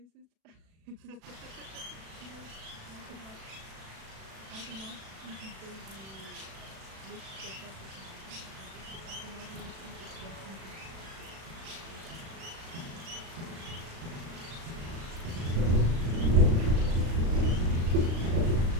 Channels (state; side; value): late; left; 36 ms